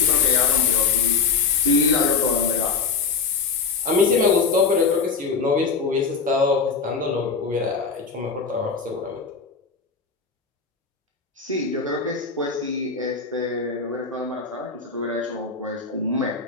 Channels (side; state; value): right; quieter; 5.1 dB